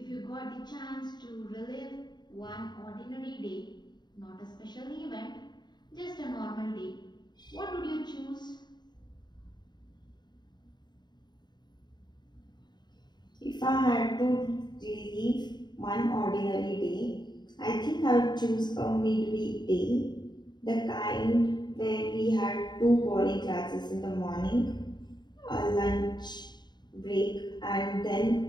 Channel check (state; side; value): late; right; 0.21 ms